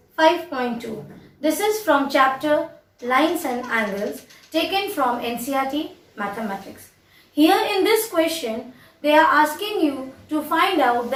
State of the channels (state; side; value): identical; both; correlation 1.00